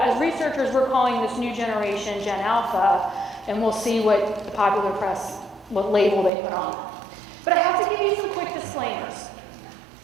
as researchers, we're calling this new generation Gen Alpha, and we'll see what the popular press, what label they put on them. But I have to give you some quick disclaimers.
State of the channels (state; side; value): drops out; left; at 6.3 s